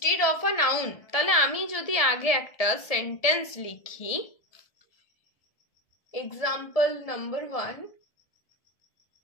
of a noun. তাহলে আমি যদি আগে একটা সেন্টেন্স লিখি, example number 1,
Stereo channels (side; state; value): right; late; 1.7 ms